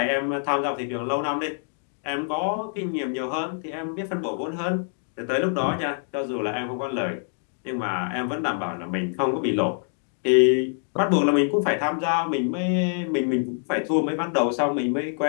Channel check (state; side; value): silent; right; 61 dB below the other